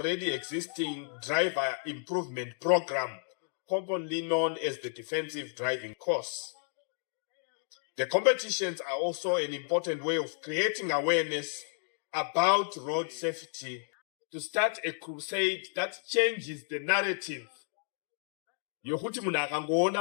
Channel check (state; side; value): silent; right; 56 dB below the other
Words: existing driver improvement program, commonly known as the defensive driving course. The competitions are also an important way of creating awareness about road safety, to start a crusade that changes the narrative. Yokuti munhu